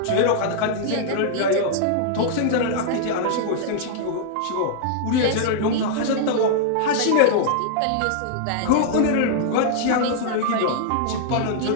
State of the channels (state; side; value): different; both; correlation -0.01